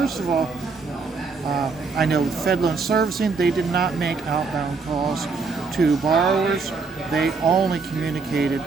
of all, I know with FedLoan Servicing, they did not make outbound calls to borrowers. They only communicated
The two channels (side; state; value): left; quieter; 4.6 dB